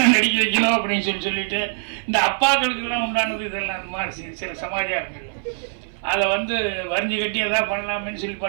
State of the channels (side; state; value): left; silent; 60 dB below the other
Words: நடிக்க வைக்கணும் அப்படின்னு சொல்லிட்டு இந்த அப்பாக்களுக்கெல்லாம் உண்டானது இதெல்லாம் அந்த மாதிரி சில சமாச்சாரங்கள் அதை வந்து வரிஞ்சு கட்டி எதாவது பண்ணலாமேன்னு சொல்லி